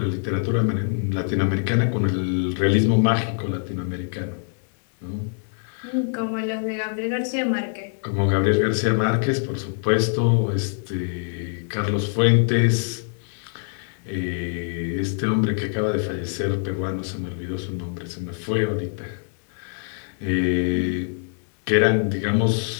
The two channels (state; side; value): silent; right; digital silence